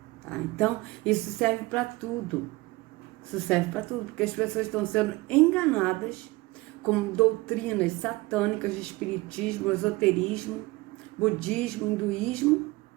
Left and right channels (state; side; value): quieter; left; 21.6 dB